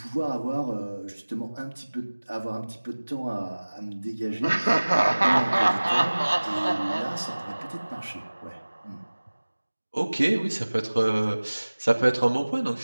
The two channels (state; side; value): inverted; both; correlation -1.00